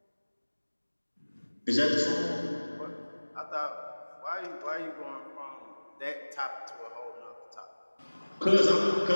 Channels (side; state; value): both; inverted; correlation -1.00